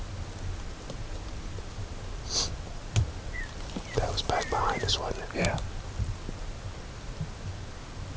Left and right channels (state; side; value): identical; both; correlation 1.00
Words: That was back behind us, wasn't it? Yeah.